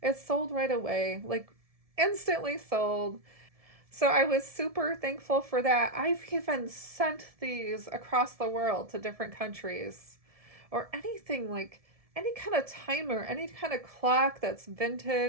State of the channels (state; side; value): late; left; 1.7 ms